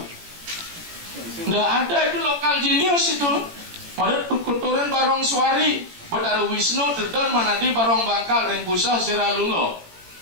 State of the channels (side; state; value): left; late; 18 ms